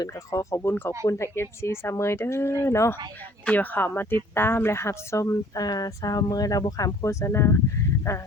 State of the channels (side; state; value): both; normal; correlation 0.55